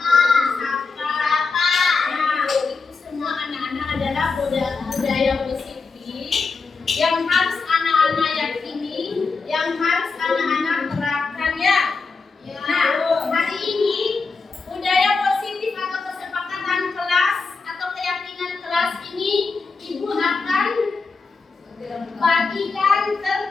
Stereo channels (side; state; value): right; quieter; 4.4 dB